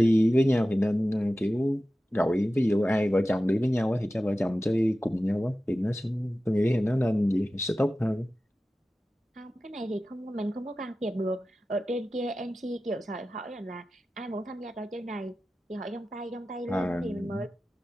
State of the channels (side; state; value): both; normal; correlation 0.94